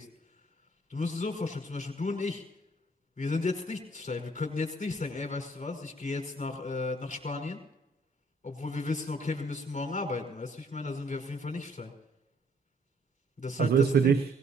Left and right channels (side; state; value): both; normal; correlation 0.63